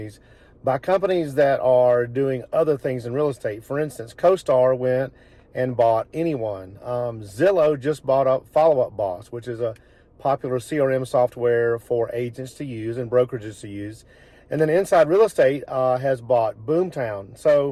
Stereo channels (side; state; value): both; identical; correlation 1.00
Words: by companies that are doing other things in real estate. For instance, CoStar went and bought Anyone. Zillow just bought up Follow Up Boss, which is a popular CRM software for agents to use and brokerages to use. And then Inside Real Estate has bought Boomtown.